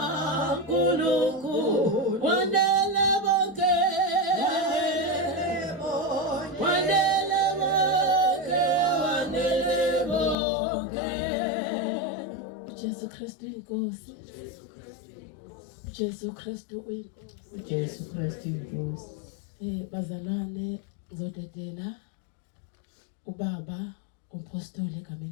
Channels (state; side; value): drops out; right; at 10.4 s